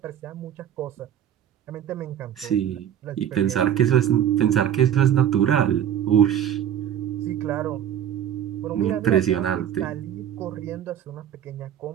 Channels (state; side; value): quieter; left; 10.0 dB